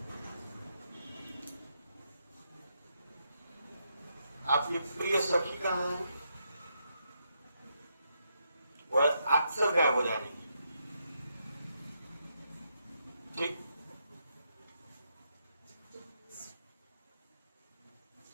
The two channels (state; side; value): inverted; both; correlation -0.80